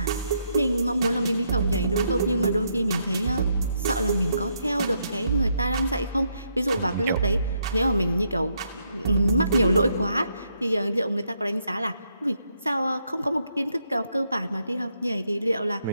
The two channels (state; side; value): inverted; both; correlation -0.77